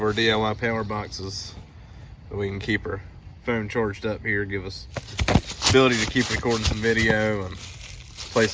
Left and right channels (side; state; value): both; identical; correlation 1.00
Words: our DIY power boxes so we can keep our phone charged up here, give us ability to keep recording some video and play